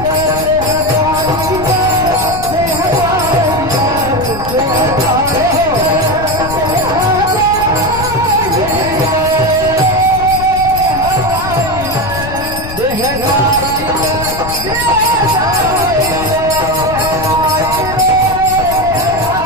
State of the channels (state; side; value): noise; left; rumble, 10 dB below the sound